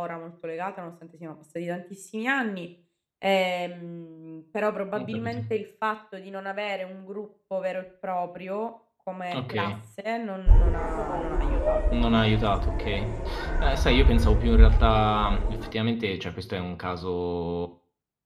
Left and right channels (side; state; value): both; identical; correlation 1.00